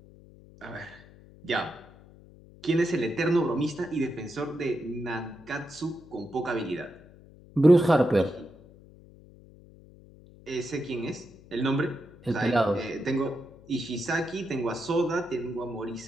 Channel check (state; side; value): noise; left; hum, 22 dB below the sound